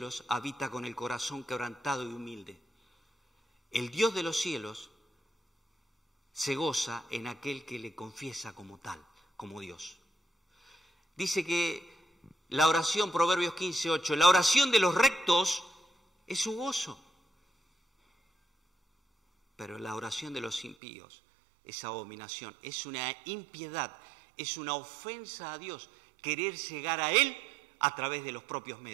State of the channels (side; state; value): left; drops out; at 20.8 s